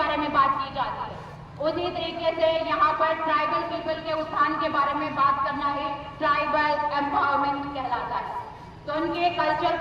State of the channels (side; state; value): both; identical; correlation 1.00